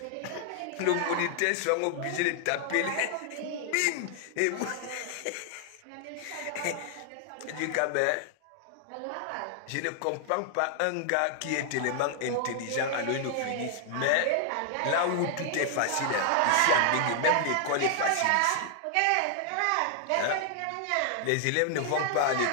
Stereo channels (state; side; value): different; both; correlation 0.00